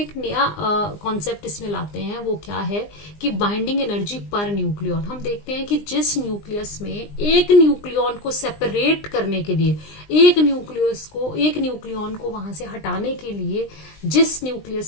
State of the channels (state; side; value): late; right; 20 ms